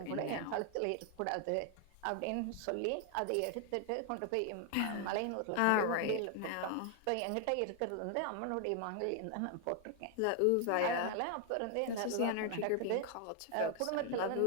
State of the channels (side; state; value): both; different; correlation 0.00